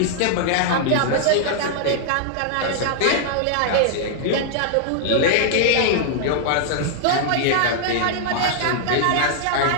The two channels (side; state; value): both; different; correlation -0.01